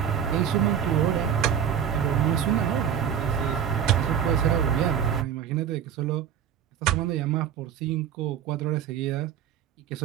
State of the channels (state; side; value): quieter; left; 8.6 dB